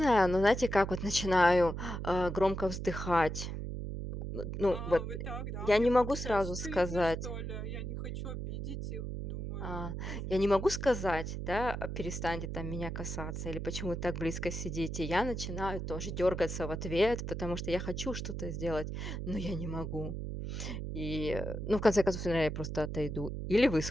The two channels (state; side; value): noise; right; hum, 5 dB below the sound